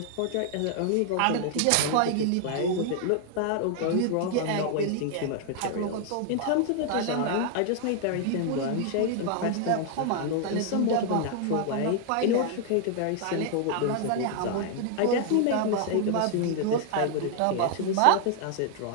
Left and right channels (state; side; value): different; both; correlation 0.00